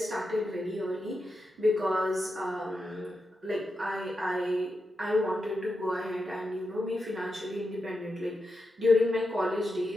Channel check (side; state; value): both; normal; correlation 0.88